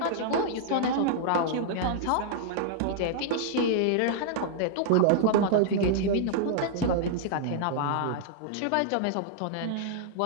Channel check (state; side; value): different; both; correlation -0.01